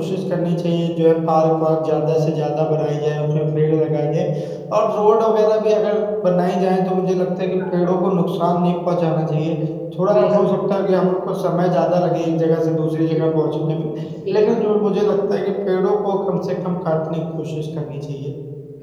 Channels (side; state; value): both; identical; correlation 1.00